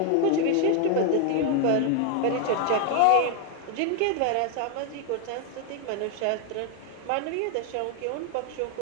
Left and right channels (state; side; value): different; both; correlation 0.00